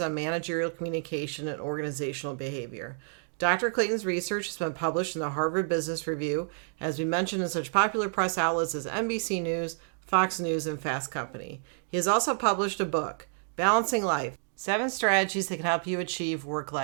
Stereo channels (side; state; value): left; silent; 58 dB below the other